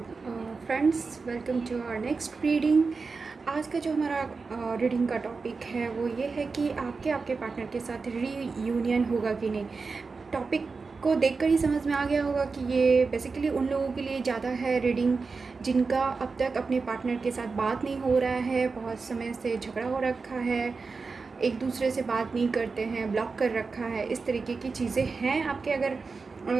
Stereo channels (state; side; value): quieter; left; 4.5 dB